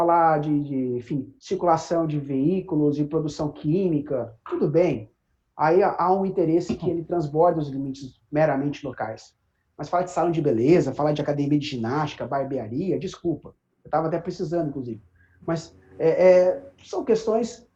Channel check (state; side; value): identical; both; correlation 1.00